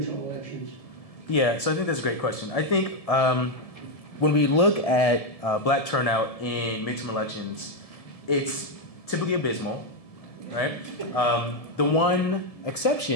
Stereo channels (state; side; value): late; right; 1.7 ms